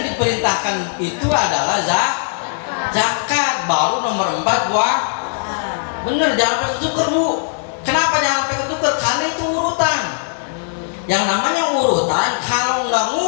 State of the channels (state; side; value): silent; right; digital silence